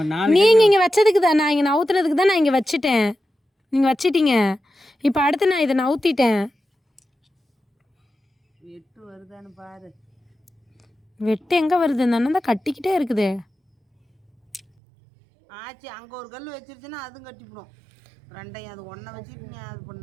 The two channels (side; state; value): left; drops out; at 14.6 s